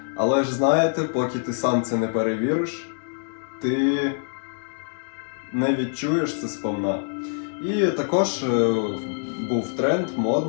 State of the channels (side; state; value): right; silent; digital silence